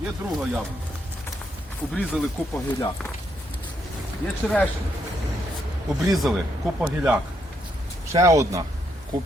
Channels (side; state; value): both; normal; correlation 0.76